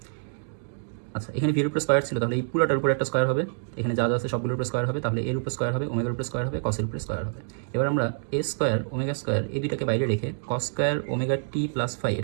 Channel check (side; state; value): left; silent; digital silence